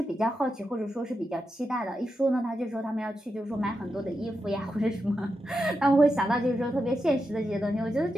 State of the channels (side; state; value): both; normal; correlation 0.87